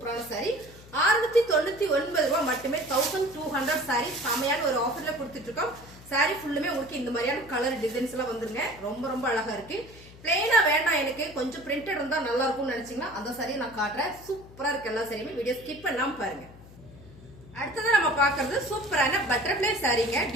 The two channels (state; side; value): noise; left; hum, 20 dB below the sound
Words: சாரி. 699 ரூபாய் மட்டுமே. 1200 சாரி செமையான ஒரு ஆஃபர்ல கொடுத்துட்டு இருக்கோம். சாரி ஃபுல்லுமே உங்களுக்கு இந்த மாதிரியான கலர் டிசைன்ஸ் எல்லாம் வந்துருங்க. ரொம்ப அழகா இருக்கு. பிளெயினா வேண்டாம், எனக்கு கொஞ்சம் பிரிண்டட் இருந்தா நல்லா இருக்கும்னு நினைச்சீங்கன்னா அந்த சாரியை நான் காட்டுறேன். சூப்பரா இருக்கு. எல்லா சாரியுமே வீடியோ ஸ்கிப் பண்ணாம பாருங்க. அடுத்தது நம்ம பாக்குறது சூப்பரான பட்டர்ஃபிளை சாரீங்க.